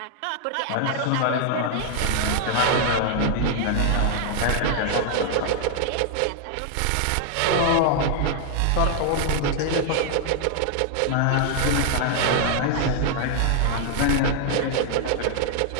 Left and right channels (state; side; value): different; both; correlation 0.00